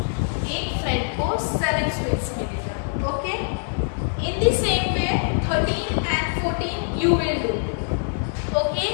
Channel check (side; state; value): right; silent; digital silence